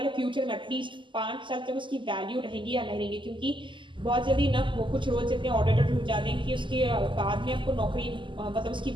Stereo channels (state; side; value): late; left; 0.24 ms